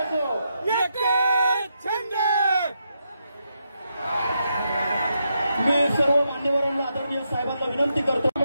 मी सर्व मान्यवरांना आदरणीय साहेबांना विनंती करतो।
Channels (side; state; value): both; inverted; correlation -0.82